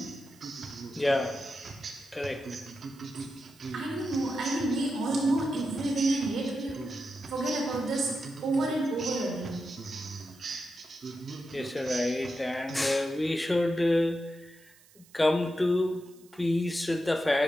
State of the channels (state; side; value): noise; right; hiss, 27 dB below the sound